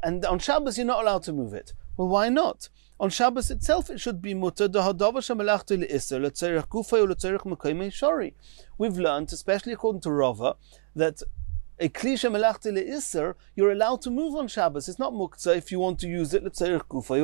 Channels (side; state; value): left; silent; digital silence